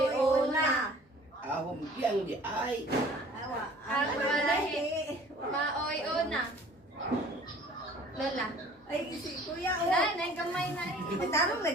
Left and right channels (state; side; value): normal; both; correlation 0.50